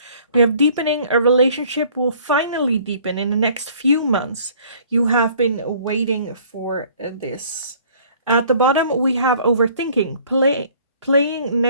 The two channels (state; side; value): inverted; both; correlation -0.55